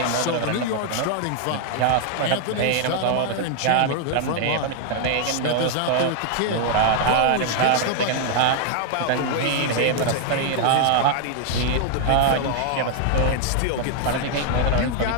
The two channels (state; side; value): different; both; correlation 0.00